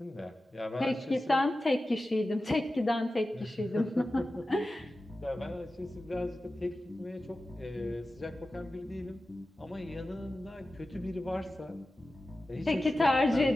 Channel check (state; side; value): normal; both; correlation 0.94